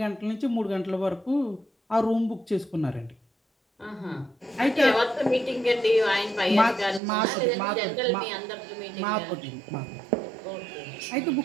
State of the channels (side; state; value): left; drops out; at 7.0 s